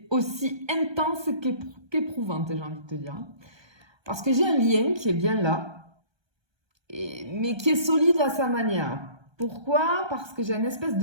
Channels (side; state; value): left; late; 1.3 ms